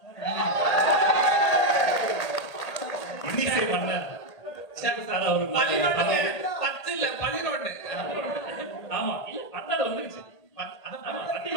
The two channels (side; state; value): right; late; 1.8 ms